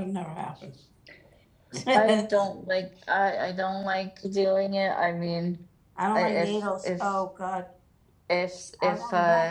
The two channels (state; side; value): identical; both; correlation 1.00